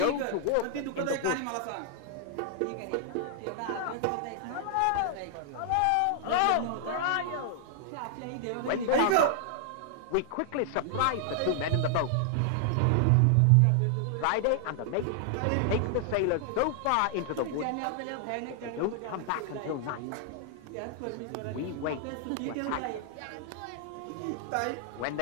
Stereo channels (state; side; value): different; both; correlation 0.00